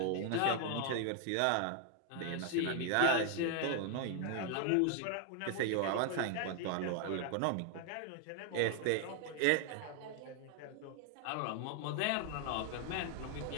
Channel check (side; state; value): both; different; correlation 0.00